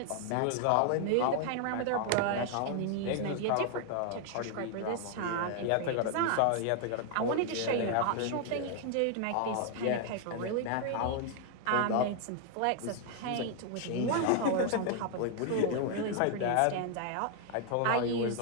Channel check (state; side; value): different; both; correlation 0.00